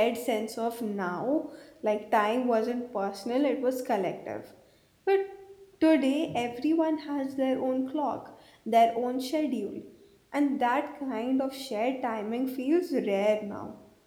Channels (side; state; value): both; identical; correlation 1.00